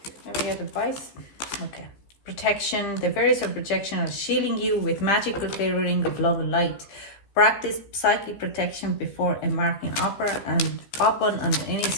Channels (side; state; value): right; late; 15 ms